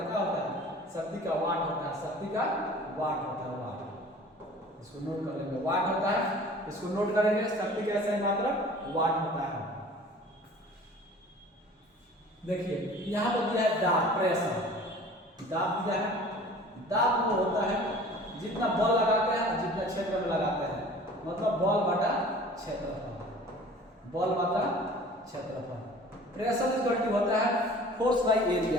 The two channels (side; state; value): both; normal; correlation 0.45